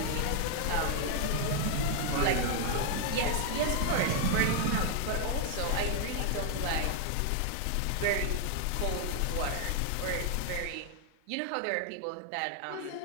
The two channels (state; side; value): different; both; correlation 0.00